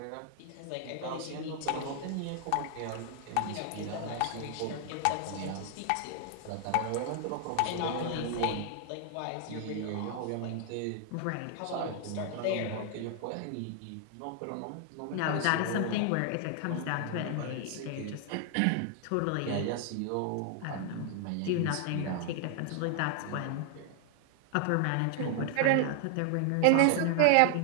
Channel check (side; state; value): both; different; correlation 0.00